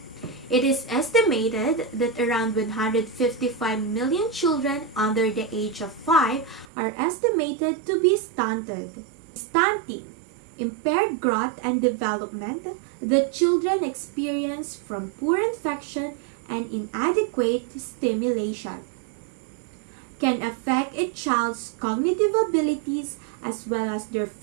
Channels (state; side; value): drops out; left; at 6.7 s